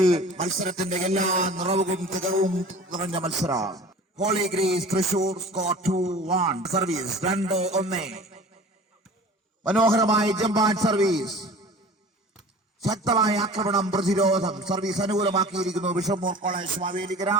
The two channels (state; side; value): normal; both; correlation 0.42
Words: മത്സരത്തിന്റെ എല്ലാ നിറവും തികവും നിറഞ്ഞ മത്സരം. Holy Grace Thrissur score 2-1. Service 2-1. മനോഹരമായ ജമ്പാൻ സർവീസ്. ശക്തമായ ആക്രമണം പ്രതിരോധം. സർവീസ് അനുകൂലമാക്കിയിരിക്കുന്നു Bishop Moore college Mavelikkara.